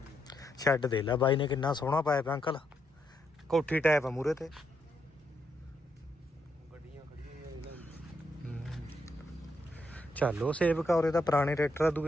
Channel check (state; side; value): normal; both; correlation 0.78